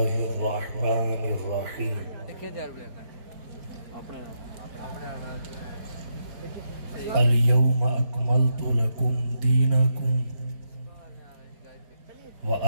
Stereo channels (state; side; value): late; left; 5.1 ms